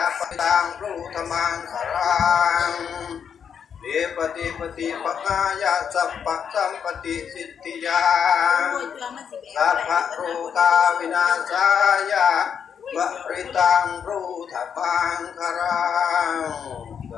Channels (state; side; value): quieter; right; 7.5 dB